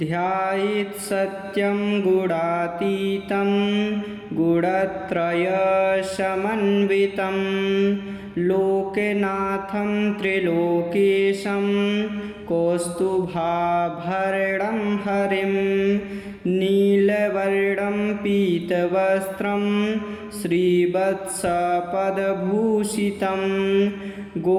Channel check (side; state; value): both; identical; correlation 1.00